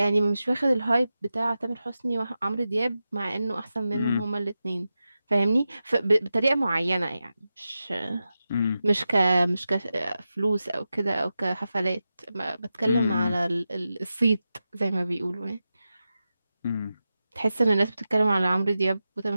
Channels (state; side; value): inverted; both; correlation -0.92